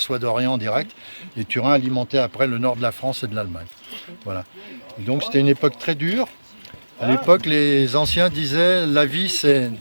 d'Orient en direct. Et Turin alimentait après le nord de la France et de l'Allemagne. Voilà. Et donc c'était une époque très dure. À l'époque, les anciens disaient la vie c'est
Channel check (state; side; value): inverted; both; correlation -1.00